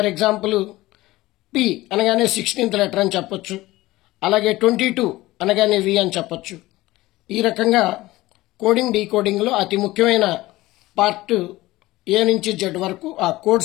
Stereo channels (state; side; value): quieter; right; 18.2 dB